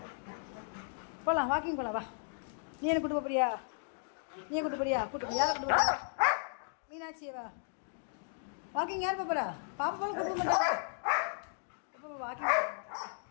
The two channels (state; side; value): silent; right; digital silence